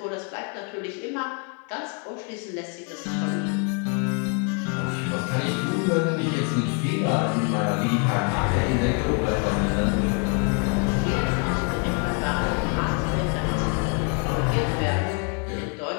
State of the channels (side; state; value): right; quieter; 36.7 dB